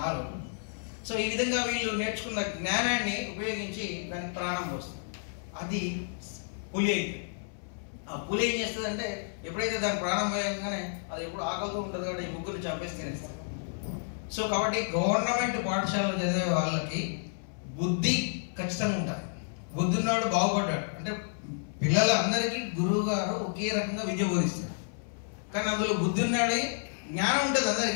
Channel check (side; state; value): right; silent; 57 dB below the other